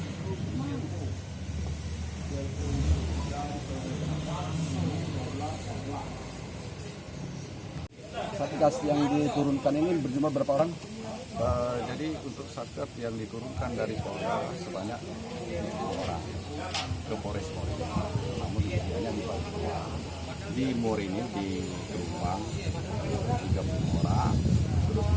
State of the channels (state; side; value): identical; both; correlation 1.00